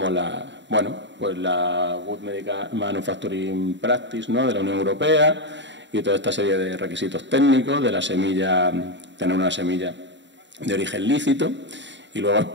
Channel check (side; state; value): left; late; 0.53 ms